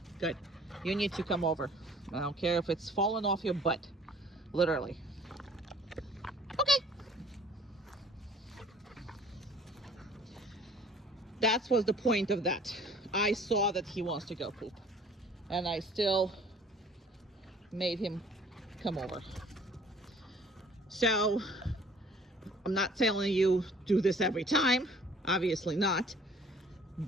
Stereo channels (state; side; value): normal; both; correlation 0.54